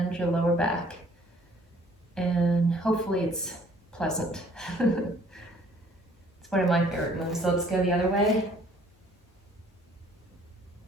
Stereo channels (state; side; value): normal; both; correlation 0.58